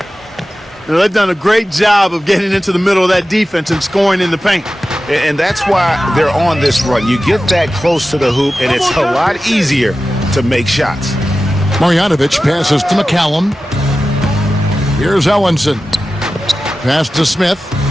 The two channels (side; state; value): both; normal; correlation 0.94